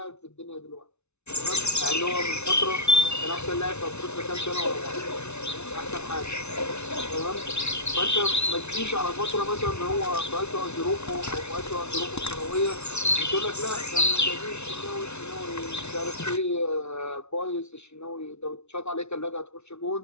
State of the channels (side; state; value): right; late; 0.81 ms